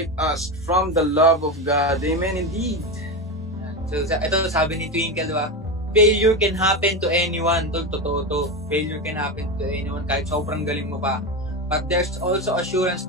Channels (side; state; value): both; normal; correlation 0.17